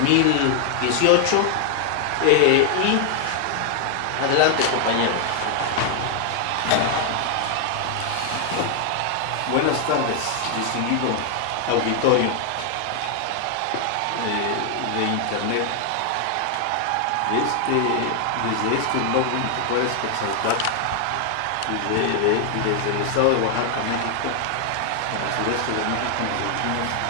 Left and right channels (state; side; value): different; both; correlation 0.00